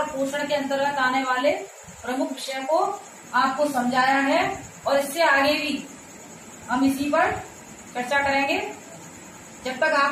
पोषण के अंतर्गत आने वाले प्रमुख विषय को आपको समझाया है और इससे आगे भी हम इसी पर चर्चा करेंगे। जब तक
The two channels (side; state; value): both; identical; correlation 1.00